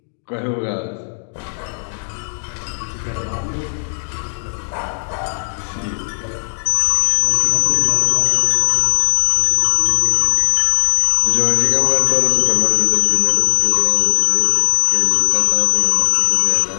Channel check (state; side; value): silent; right; digital silence